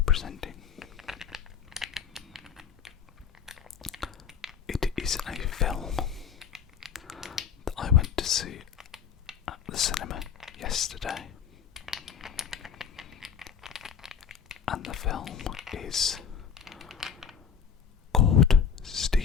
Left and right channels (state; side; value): quieter; right; 7.4 dB